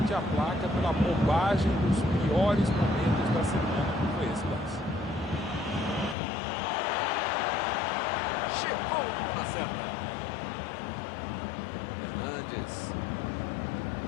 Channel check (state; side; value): drops out; right; at 6.2 s